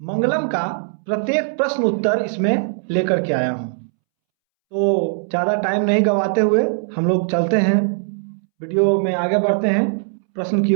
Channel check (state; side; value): silent; left; 66 dB below the other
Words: का प्रत्येक प्रश्न उत्तर इसमें लेकर के आया हूँ। तो ज़्यादा टाइम नहीं गवाते हुए हम लोग चलते हैं, वीडियो में आगे बढ़ते हैं प्रश्न की